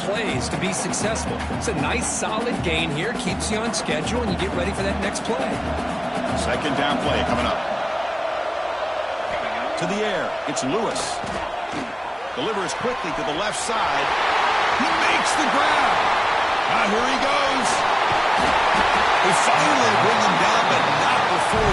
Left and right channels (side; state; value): both; identical; correlation 1.00